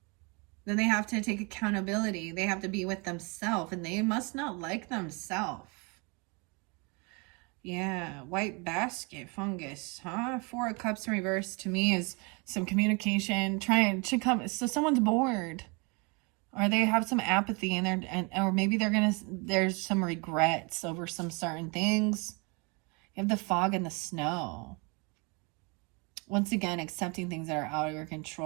then they have to take accountability. They have to be with themselves, and they must not like themselves. Yeah, white basket fungus, huh? Four of Cups in reverse to me is some communication, trying to come. So someone's bored, or they have some apathy in there, or maybe there's some regrets over some certain things. You have the fog and the snow. Once again, accepting things that are out of your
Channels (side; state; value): left; quieter; 30.5 dB